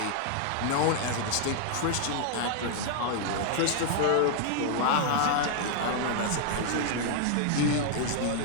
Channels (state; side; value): different; both; correlation 0.00